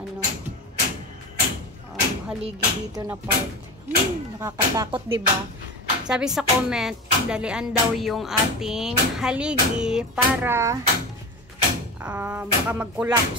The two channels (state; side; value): normal; both; correlation 0.26